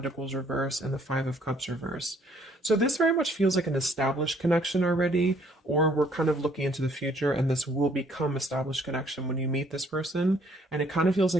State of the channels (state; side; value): normal; both; correlation 0.63